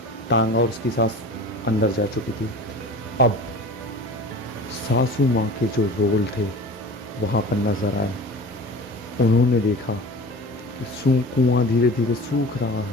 टांगा और उसकी सास अंदर जा चुकी थी। अब सासू माँ के जो रोल थे वहाँ पर नज़र आए। उन्होंने देखा कि कुआं धीरे धीरे सूख रहा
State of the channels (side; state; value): both; normal; correlation 0.37